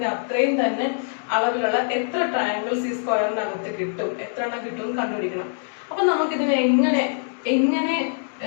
അത്രയും തന്നെ അളവിലുള്ള എത്ര ട്രയാങ്കിൾസ് ഈ സ്ക്വയറിനകത്ത് കിട്ടും, എത്ര എണ്ണം കിട്ടും കണ്ടുപിടിക്കണം. അപ്പൊ നമുക്കിതിനെ എങ്ങനെ എങ്ങനെ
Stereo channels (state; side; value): silent; right; digital silence